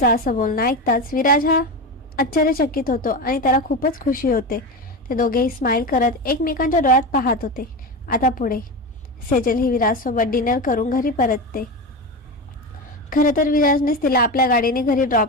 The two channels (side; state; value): both; normal; correlation 0.20